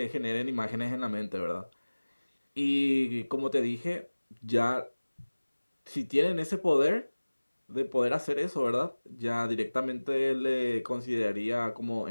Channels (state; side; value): inverted; both; correlation -1.00